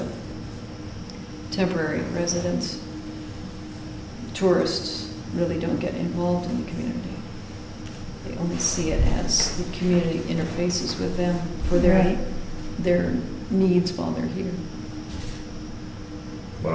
temporary residents, tourists, really don't get involved in the community. They only see it as the community interfaces with them for Right. their needs while they're here. what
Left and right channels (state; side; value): identical; both; correlation 1.00